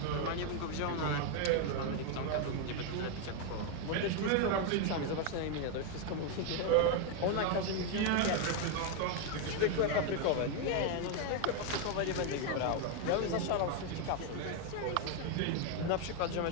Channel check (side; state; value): both; different; correlation 0.01